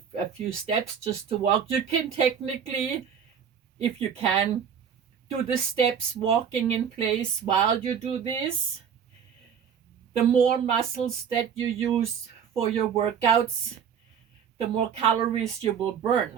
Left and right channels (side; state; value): left; quieter; 7.6 dB